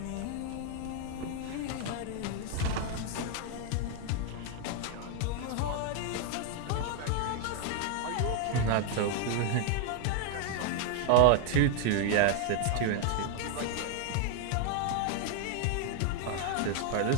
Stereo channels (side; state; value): both; different; correlation 0.00